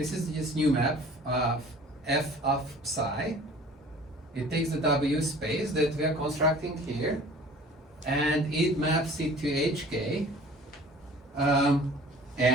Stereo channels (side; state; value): both; normal; correlation 0.47